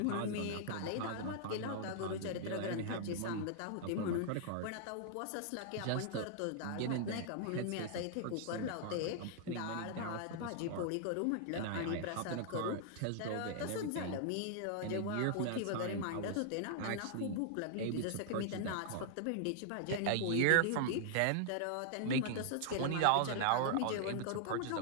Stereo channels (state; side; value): different; both; correlation -0.01